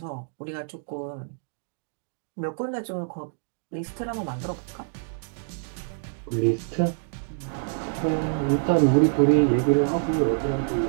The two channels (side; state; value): left; silent; digital silence